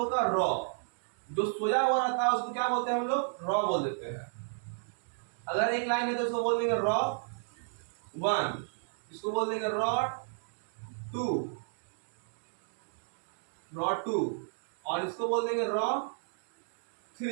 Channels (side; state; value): left; silent; digital silence